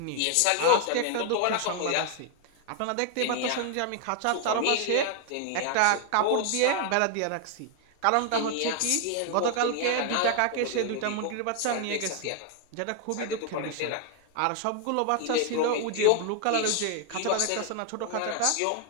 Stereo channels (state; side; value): different; both; correlation 0.00